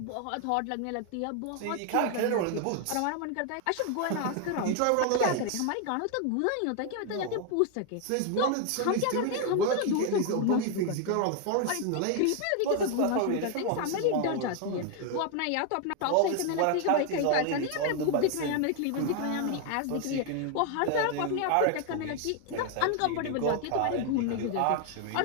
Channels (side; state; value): both; different; correlation 0.01